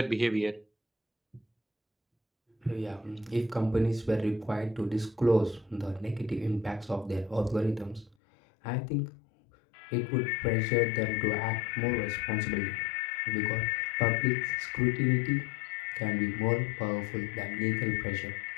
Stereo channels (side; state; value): right; drops out; at 8.2 s